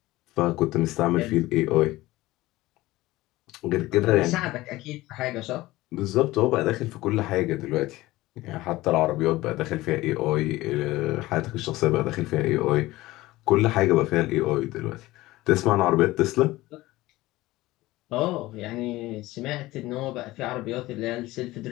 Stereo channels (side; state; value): right; quieter; 18.2 dB